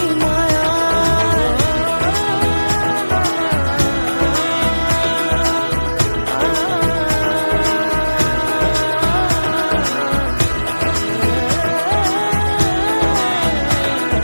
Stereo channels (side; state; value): both; inverted; correlation -1.00